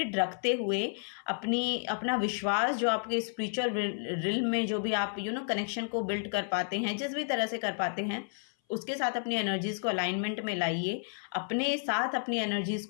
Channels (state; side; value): silent; right; 56 dB below the other